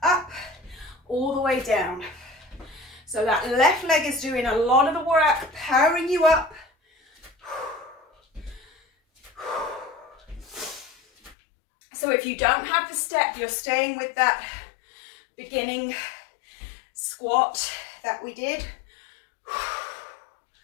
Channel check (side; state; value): right; drops out; at 11.4 s